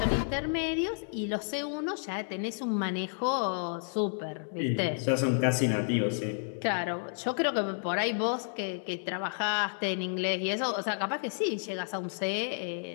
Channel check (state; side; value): silent; right; digital silence